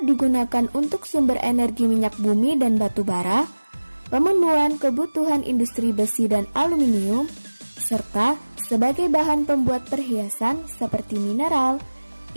digunakan untuk sumber energi minyak bumi dan batu bara, pemenuhan kebutuhan industri besi dan aluminium, serta sebagai bahan pembuat perhiasan seperti mineral,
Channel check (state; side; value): inverted; both; correlation -1.00